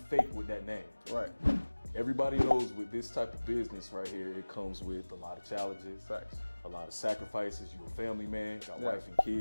with that name. Right. Everybody knows with this type of business right here, it comes with a lot of challenges, Facts. a lot of sacrifices. You're a family man, got wife and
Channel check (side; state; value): both; inverted; correlation -1.00